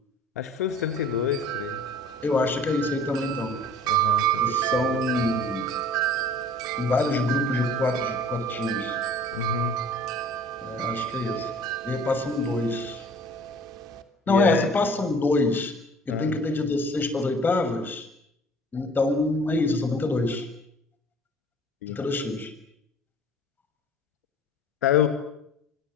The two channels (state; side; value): normal; both; correlation 0.49